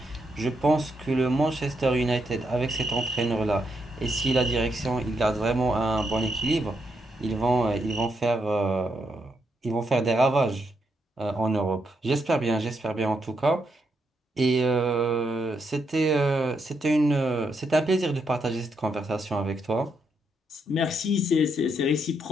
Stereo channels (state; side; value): normal; both; correlation 0.79